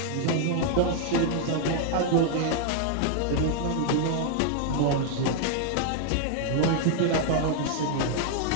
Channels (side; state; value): both; different; correlation 0.00